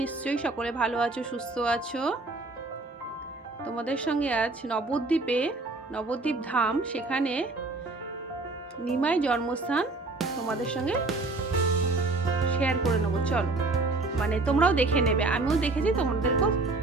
নিশ্চয়ই সকলে ভালো আছো, সুস্থ আছো। তোমাদের সঙ্গে আজ নবদ্বীপ ধাম, সেখানে নিমাই জন্মস্থান তোমাদের সঙ্গে শেয়ার করে নেবো। চলো, মানে তোমরাও দেখে নেবে, আমিও দেখেছি, তোমাদেরকেও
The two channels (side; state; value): left; quieter; 3.3 dB